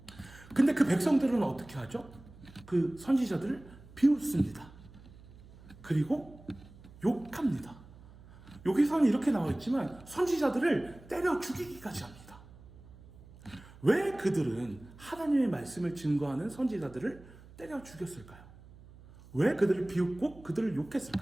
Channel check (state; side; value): noise; right; hum, 21 dB below the sound